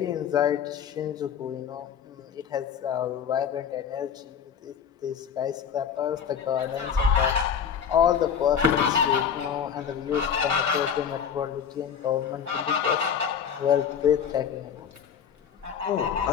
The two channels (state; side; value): quieter; right; 7.7 dB